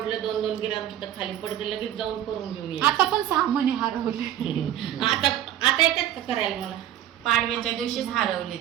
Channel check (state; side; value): quieter; left; 11.8 dB